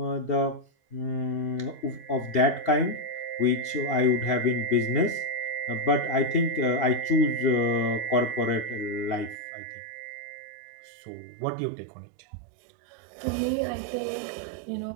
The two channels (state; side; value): drops out; left; at 9.3 s